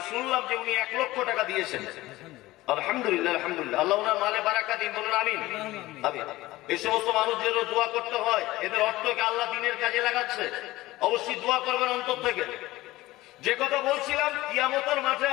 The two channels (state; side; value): quieter; right; 18.1 dB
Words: শুনলাম যে উনি 1 লক্ষ টাকা দিয়েছেন। আলহামদুলিল্লাহ, আলহামদুলিল্লাহ, আল্লাহ ওনার মালে বারাকা দিন, বলুন আমিন। এই সমস্ত মানুষদের দোয়া করতে হয়, এদের অর্থকে আল্লাহ দ্বীনের কাজে লাগাচ্ছে, অবশ্যই দোয়া করবেন অন্তর থেকে। যে কথা বলছিলাম, কিয়ামতের মাঠে